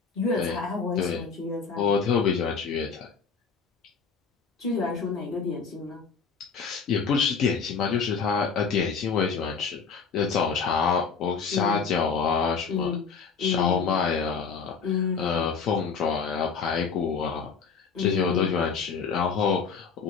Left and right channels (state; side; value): quieter; right; 5.6 dB